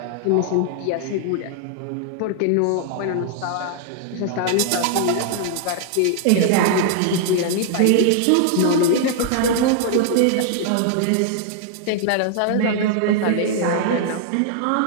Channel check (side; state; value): both; different; correlation 0.00